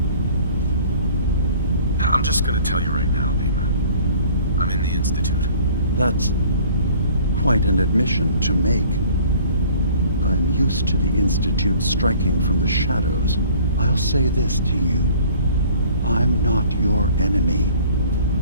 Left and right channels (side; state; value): both; inverted; correlation -0.52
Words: I'm just gonna tell you right now, DiMA. I'm in the Institute. That's quite an admission to make. I'm used to the Institute striking from the shadows. I'll say this to you. I'm not your enemy.